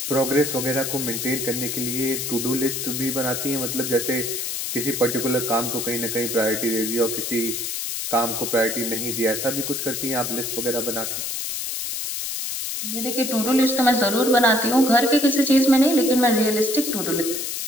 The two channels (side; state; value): left; noise; hiss, 3 dB below the sound